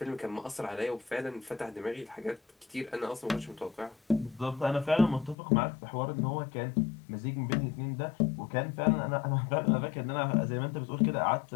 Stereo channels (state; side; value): drops out; right; at 5.4 s